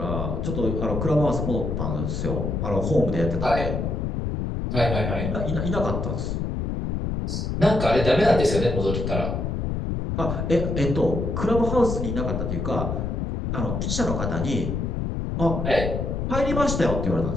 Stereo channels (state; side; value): noise; left; rumble, 2 dB below the sound